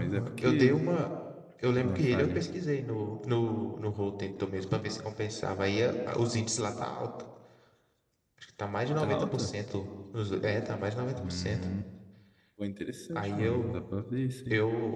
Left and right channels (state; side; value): identical; both; correlation 1.00